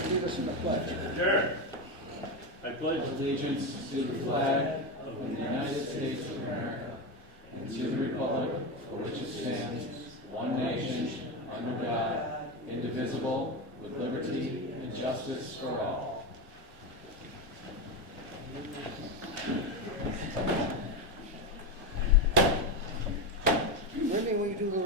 lead us in the pledge? Sure. I pledge allegiance to the flag of the United States of America and to the republic for which it stands, one nation, under God, indivisible, with liberty and justice for all. Wendy, will you do the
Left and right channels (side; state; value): both; normal; correlation 0.14